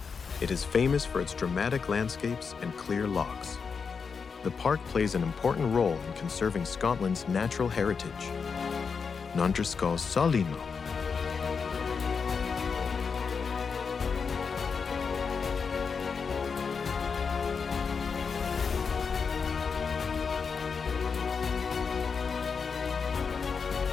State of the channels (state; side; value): quieter; right; 5.6 dB